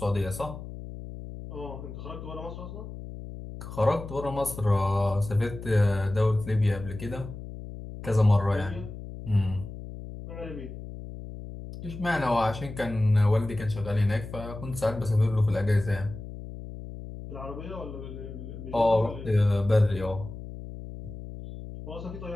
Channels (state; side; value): noise; left; hum, 11 dB below the sound